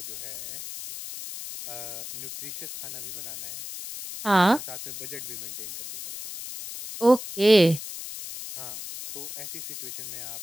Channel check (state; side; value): noise; left; hiss, 10 dB below the sound